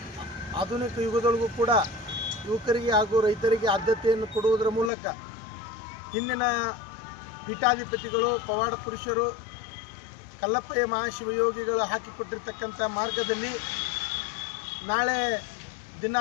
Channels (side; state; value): right; drops out; at 4.9 s